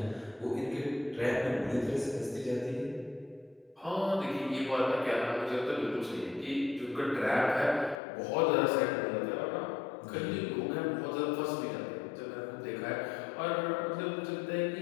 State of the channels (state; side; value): drops out; right; at 8.0 s